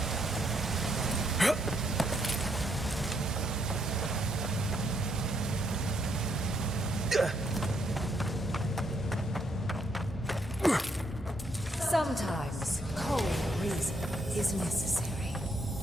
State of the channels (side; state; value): both; normal; correlation 0.74